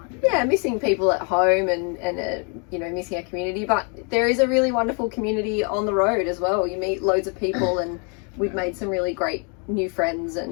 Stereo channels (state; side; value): quieter; right; 37.2 dB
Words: Yeah, missing people at home and missing our community. But there is a really wonderful community on the road as well. You meet loads of people, and we've made some really great new friends,